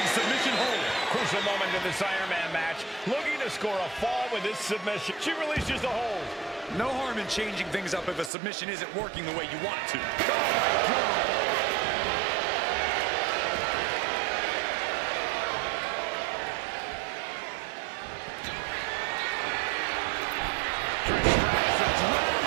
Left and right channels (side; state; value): left; drops out; at 8.3 s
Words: Crucial moment into this Iron Man match, looking to score a fall with this submission. She releases the hold. No harm in changing things up if a submission isn't working the way you want it to. Oh, my God.